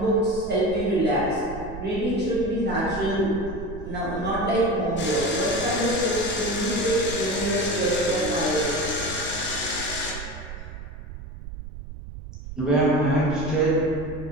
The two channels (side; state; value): right; noise; rumble, 11 dB below the sound